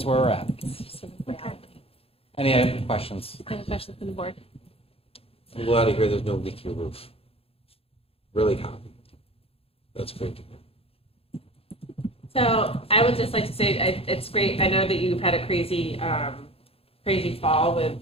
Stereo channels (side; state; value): right; late; 0.28 ms